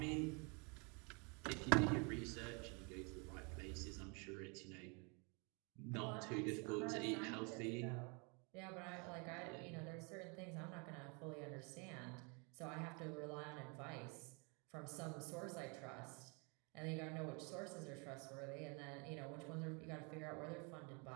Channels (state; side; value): quieter; left; 32.8 dB